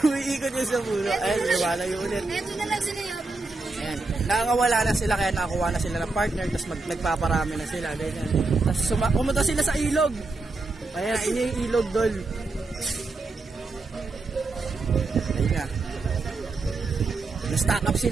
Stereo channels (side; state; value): left; quieter; 3.5 dB